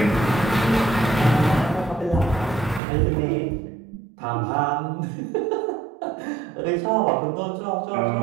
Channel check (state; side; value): drops out; left; at 2.8 s